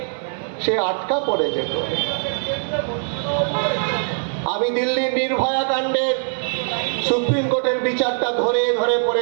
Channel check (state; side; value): silent; left; 58 dB below the other